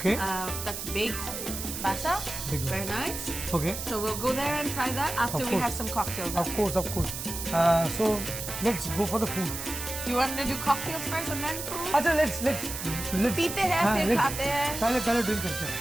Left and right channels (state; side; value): noise; right; hiss, 6 dB below the sound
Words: That's baked basa. Very nice. Okay. So we'll go there and try that after we have some cocktails. Of course. So let's go for the food. You want to do cocktails first and then food? अच्छा let's पीते हैं फिर खाते हैं पहले drink करते हैं